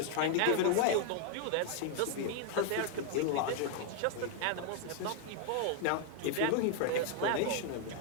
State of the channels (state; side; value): different; both; correlation 0.00